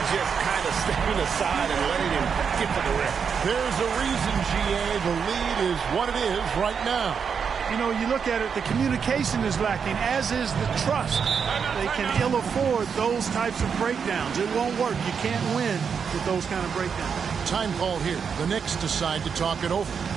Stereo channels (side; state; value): left; quieter; 6.5 dB